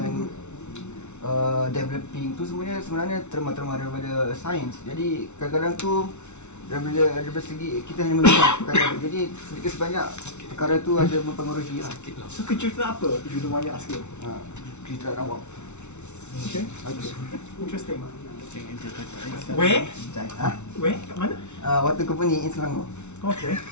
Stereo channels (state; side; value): late; right; 0.82 ms